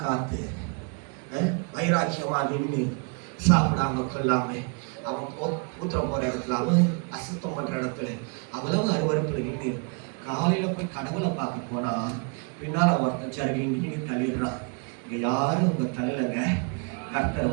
காற்று, வைராக்கியமாக நின்று சாப்பிடாம கொள்ளாம அவன் ஊத்திரம் போகிற இடத்துல, அவன் அசுத்தம் பண்ணுற இடத்துல அவ்வளவு அருவறுப்பில் நின்று காலையில் போய் கடவுளை பார்க்க போனால் பின்னால் ஒருத்தன் சருகிண்டின்னு தள்ளிடுறான். இங்கே யாரும் உங்கள் தள்ளலைங்க, கர்த்தர்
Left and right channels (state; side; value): quieter; left; 35.3 dB